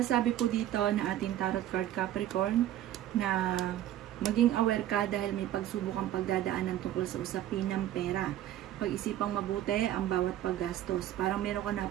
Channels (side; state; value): left; quieter; 12.6 dB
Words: po dito na ating tarot card Capricorn na maging aware ka dahil may pagsubukang pagdadaanan tungkol sa usapin ng pera. Pag-isipang mabuti ang bawat paggastos. Parang meron ka na